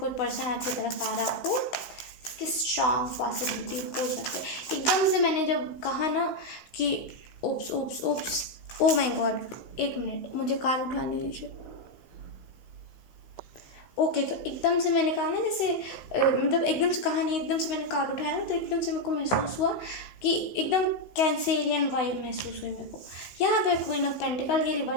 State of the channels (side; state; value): right; late; 16 ms